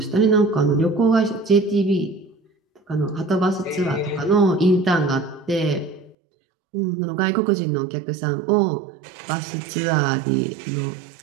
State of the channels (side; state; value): left; drops out; at 6.2 s